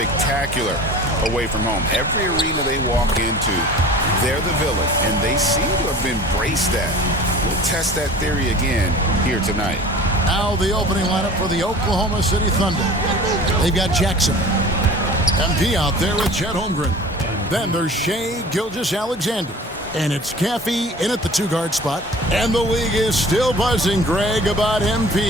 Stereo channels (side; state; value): both; normal; correlation 0.42